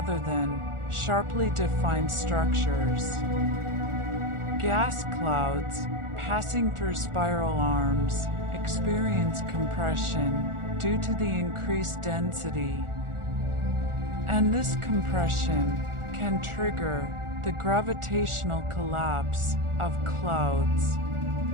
than sharply defined structures. Gas clouds passing through spiral arms experience compression due to the increased density, and this compression can trigger the gravitational collapse of clouds,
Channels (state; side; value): late; left; 1.4 ms